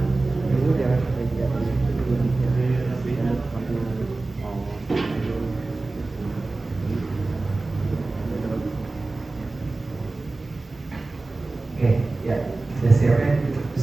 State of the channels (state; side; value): quieter; left; 3.3 dB